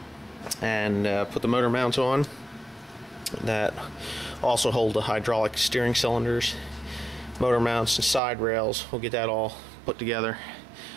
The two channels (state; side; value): drops out; left; at 8.2 s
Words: and put the motor mounts on that also hold the hydraulic steering cylinders, motor mounts, and side rails. We'll get that all put together,